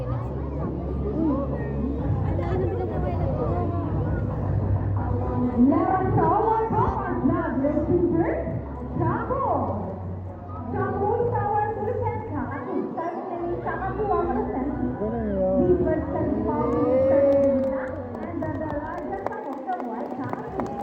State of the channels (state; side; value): identical; both; correlation 1.00